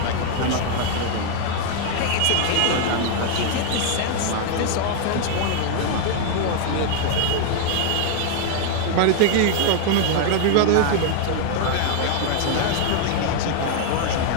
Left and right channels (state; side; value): different; both; correlation 0.00